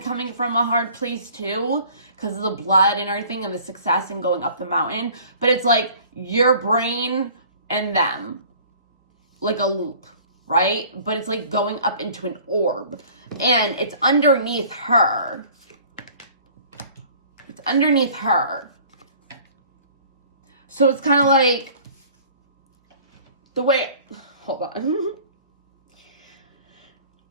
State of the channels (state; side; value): inverted; both; correlation -0.50